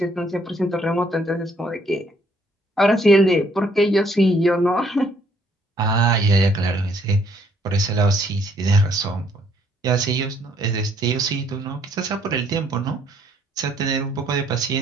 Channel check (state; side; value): normal; both; correlation 0.67